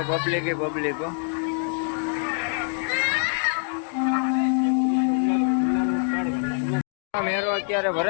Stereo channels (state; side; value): silent; right; digital silence